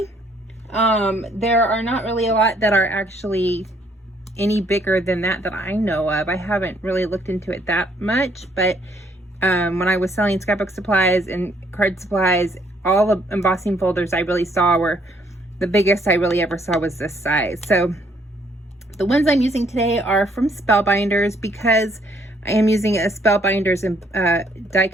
There are not really a lot that are actually any bigger than that I know of. I haven't really looked into it that much, but when I was selling scrapbook supplies and card supplies, all the embossing folders I really saw were, the biggest I really ever saw was this size. So the ones I'm using today are from Spellbinders, because I am using a Spellbinders die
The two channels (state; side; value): normal; both; correlation 0.67